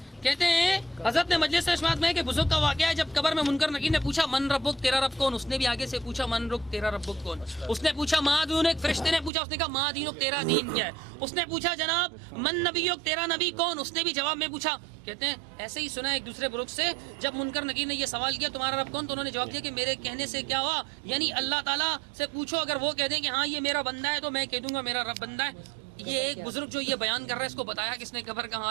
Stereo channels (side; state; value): left; drops out; at 9.3 s